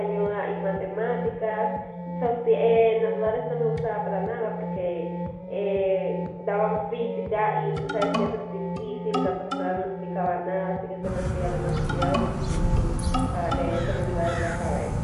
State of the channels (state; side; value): identical; both; correlation 1.00